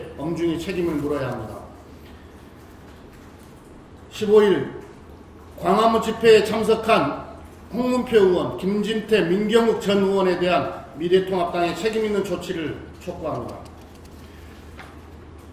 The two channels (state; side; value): identical; both; correlation 1.00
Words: 엄중히 책임을 물어야 합니다. 15일 광화문 집회에 참석한 홍문표 의원, 김진태, 민경욱 전 의원에 대한 미래통합당의 책임있는 조치를 촉구합니다.